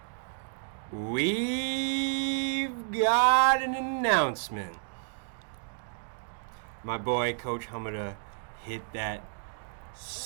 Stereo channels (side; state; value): left; silent; digital silence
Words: gun. We've got an announcement. My boy, Coach Hommida, hit that